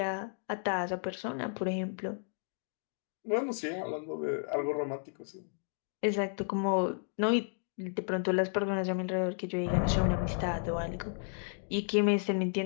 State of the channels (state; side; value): silent; right; digital silence